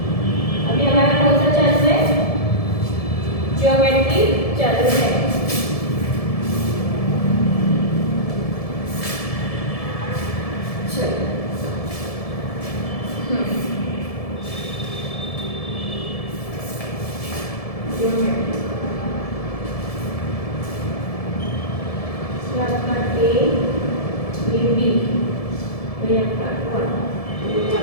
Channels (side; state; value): right; late; 1.7 ms